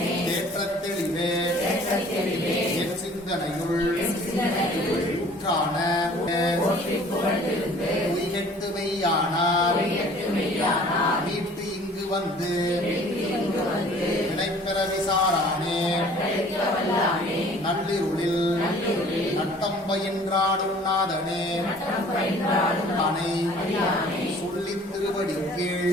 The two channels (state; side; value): normal; both; correlation 0.51